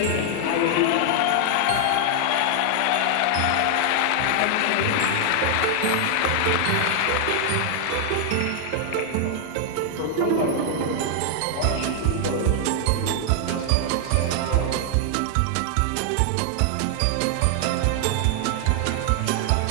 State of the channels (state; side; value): different; both; correlation 0.00